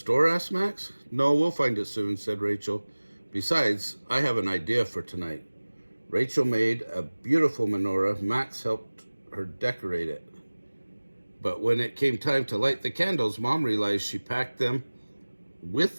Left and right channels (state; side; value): inverted; both; correlation -1.00